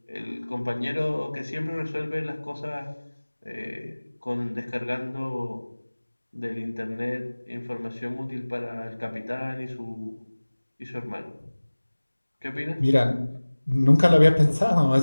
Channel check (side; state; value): both; inverted; correlation -1.00